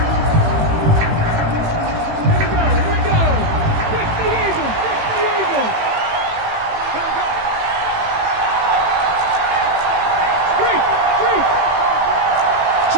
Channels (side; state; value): left; late; 18 ms